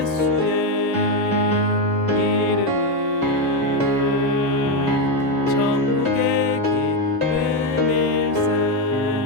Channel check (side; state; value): both; normal; correlation 0.07